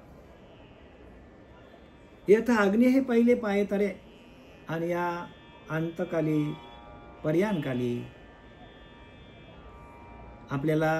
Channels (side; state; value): both; identical; correlation 1.00